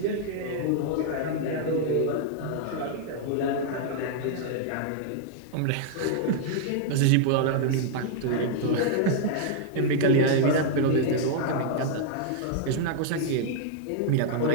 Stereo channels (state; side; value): different; both; correlation -0.01